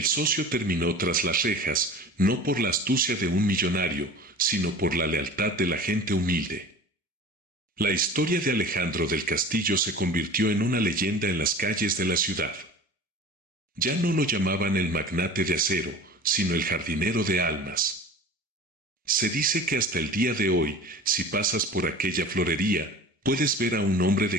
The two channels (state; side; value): normal; both; correlation 0.39